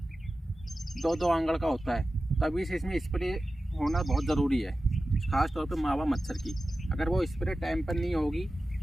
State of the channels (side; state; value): both; normal; correlation 0.94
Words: 2-2 आंगड़ का होता है, तभी से इसमें स्प्रे होना बहुत ज़रूरी है, ख़ास तौर पे मावा मच्छर की। अगर वो स्प्रे टाइम पर नहीं होगी